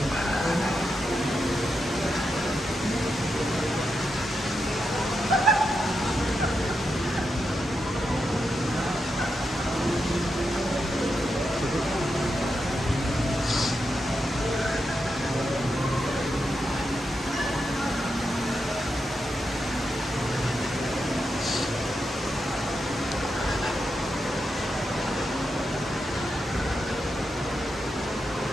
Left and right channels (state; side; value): normal; both; correlation 0.86